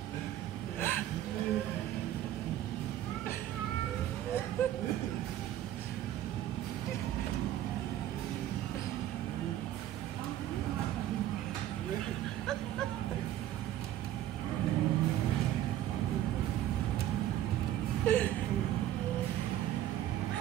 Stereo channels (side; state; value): left; quieter; 12.6 dB